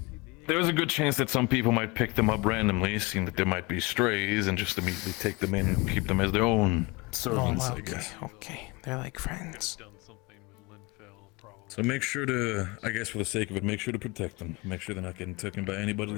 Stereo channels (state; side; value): quieter; right; 25.5 dB